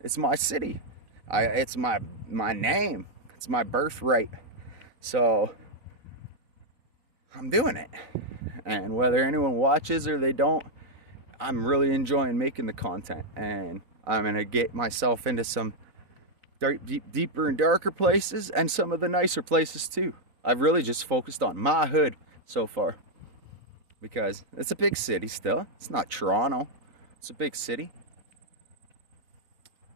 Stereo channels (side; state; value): left; late; 4.0 ms